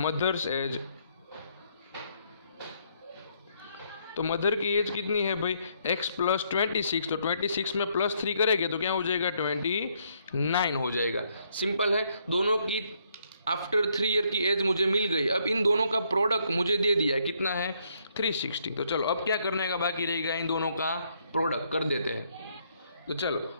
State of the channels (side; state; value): both; inverted; correlation -0.71